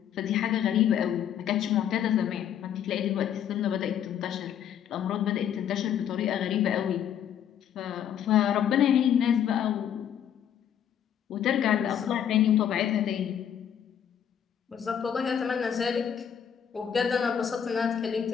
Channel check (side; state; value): right; quieter; 9.2 dB